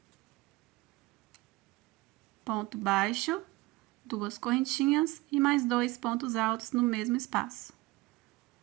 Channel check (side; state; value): left; quieter; 20.3 dB